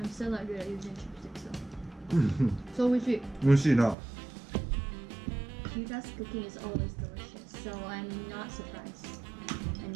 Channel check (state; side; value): drops out; left; at 4.0 s